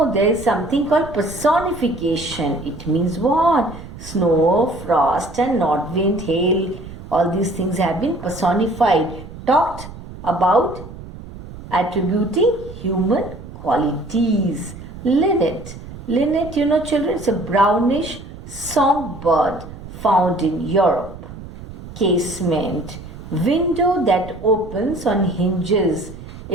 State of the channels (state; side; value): noise; right; rumble, 14 dB below the sound